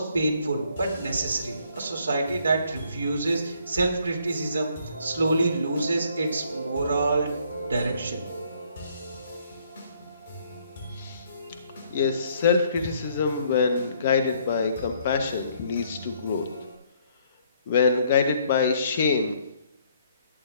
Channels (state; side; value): inverted; both; correlation -0.66